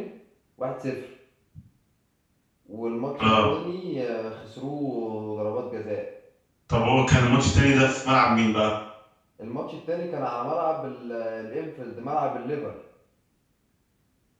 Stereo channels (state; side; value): identical; both; correlation 1.00